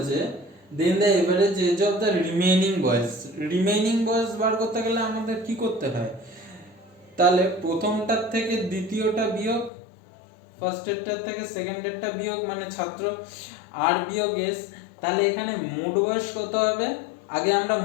then the average age of the remaining boys. Remaining boys বার করতে গেলে আমাদের কি করতে হয়, তাহলে প্রথমটার থেকে দ্বিতীয়টা বিয়োগ, ফার্স্টেরটার থেকে সেকেন্ডেরটা বিয়োগ, মানে ছাত্র আর বিয়োগ এস। তাহলে এখানে মোট বয়স কত হবে, আগে আমরা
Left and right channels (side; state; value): right; drops out; at 9.7 s